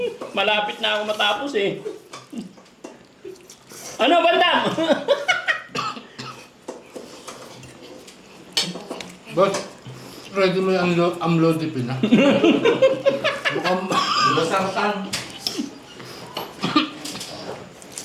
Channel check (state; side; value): identical; both; correlation 1.00